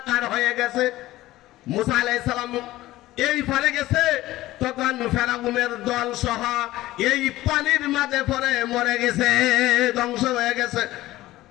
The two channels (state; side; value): quieter; right; 16.6 dB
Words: হয়ে গেছে। মুসা আলাইহিস সালাম এই পারে গেছে, তখন ফেরাউনের দল সহ এই পানির মাঝে পরে মরে গেছে, ধ্বংস হয়ে গেছে।